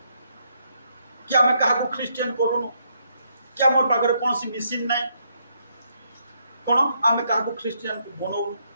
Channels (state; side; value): inverted; both; correlation -0.75